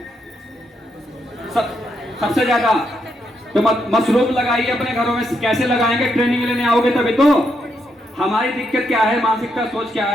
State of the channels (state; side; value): normal; both; correlation 0.79